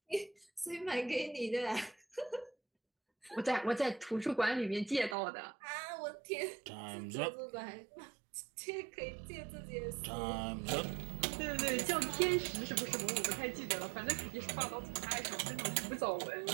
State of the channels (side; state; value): left; drops out; at 5.2 s